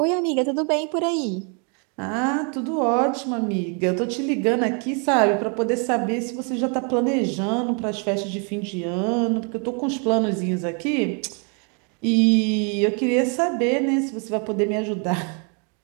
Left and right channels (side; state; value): left; quieter; 37.8 dB